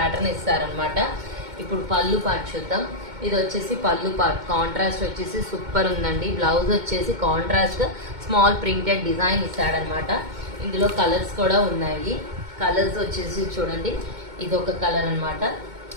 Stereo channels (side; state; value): left; late; 2.2 ms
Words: ఇస్తారనమాట. ఇప్పుడు పళ్ళు పార్ట్ చూద్దాం. ఇది వచ్చేసి పళ్ళు పార్ట్. కాంట్రాస్ట్ వచ్చేసి సూపర్ ఉందండి. బ్లౌజ్ వచ్చేసి కాంట్రాస్ట్ స్మాల్ ప్రింటెడ్ డిజైన్ ఇస్తాడనమాట. ఇందులో కలర్స్ కూడా ఉన్నాయి. కలర్స్ వచ్చేసి చూడండి, ఇది ఒక కలర్ అనమాట,